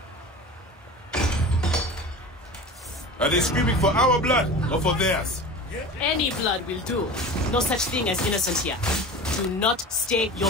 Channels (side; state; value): both; normal; correlation 0.34